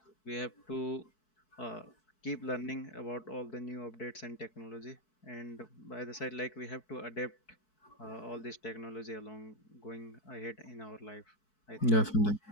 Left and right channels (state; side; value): late; right; 4.6 ms